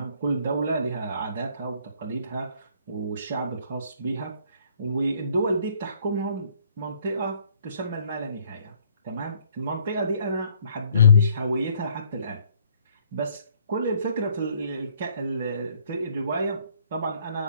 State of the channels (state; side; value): inverted; both; correlation -0.63